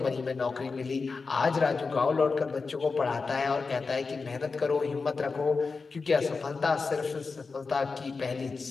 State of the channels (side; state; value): right; quieter; 4.5 dB